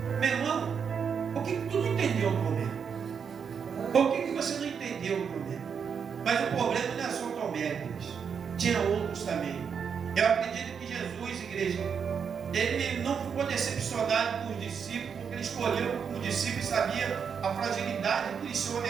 meu irmão, o que tu não entendeu, Tomé? O que você não entendeu, Tomé? Mas o problema não é só Tomé, igreja. Tinha outros também. Eu acredito que Jesus, igreja, ele não ficou decepcionado com os discípulos, porque ele escolheu como discípulo e sabia a fragilidade que eles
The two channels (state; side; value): quieter; left; 6.8 dB